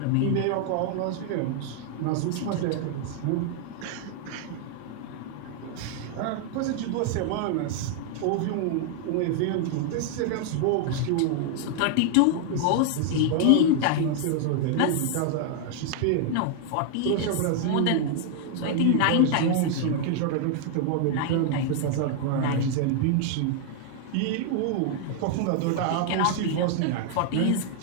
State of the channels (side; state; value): both; different; correlation 0.00